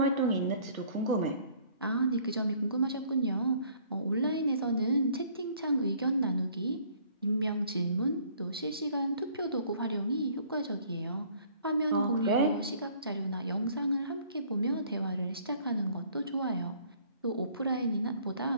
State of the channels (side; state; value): both; inverted; correlation -0.58